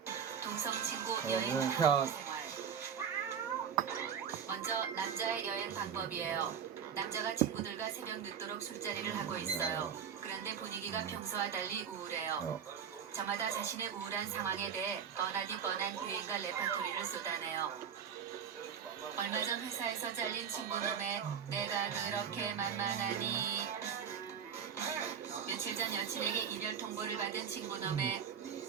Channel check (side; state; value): left; quieter; 7.7 dB